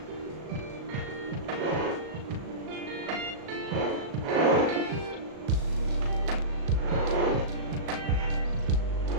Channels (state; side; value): late; left; 37 ms